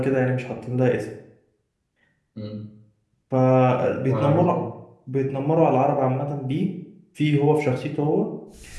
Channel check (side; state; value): both; identical; correlation 1.00